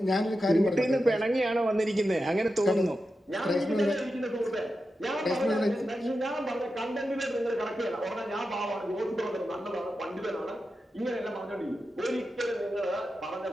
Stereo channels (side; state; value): both; normal; correlation 0.90